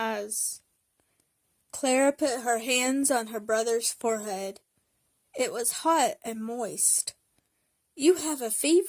Clara put her hands on her brother's forehead. It was hot and moist. You have a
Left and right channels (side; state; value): both; identical; correlation 1.00